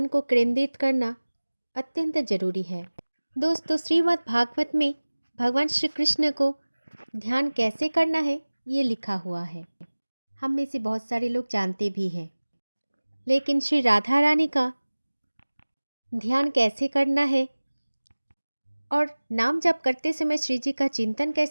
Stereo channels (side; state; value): both; inverted; correlation -1.00